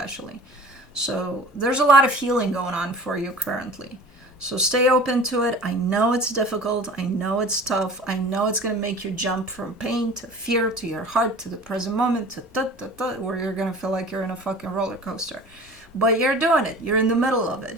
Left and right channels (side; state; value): both; normal; correlation 0.41